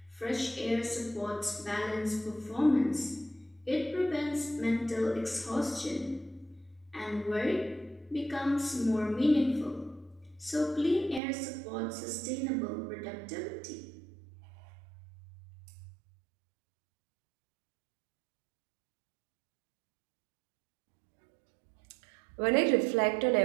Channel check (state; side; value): drops out; left; at 11.2 s